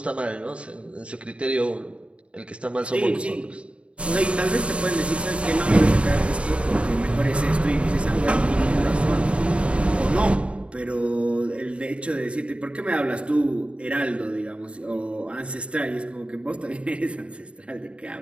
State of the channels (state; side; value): late; left; 0.060 ms